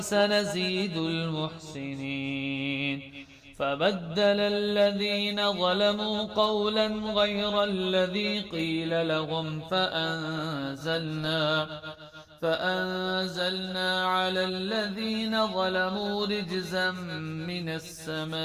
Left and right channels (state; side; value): identical; both; correlation 1.00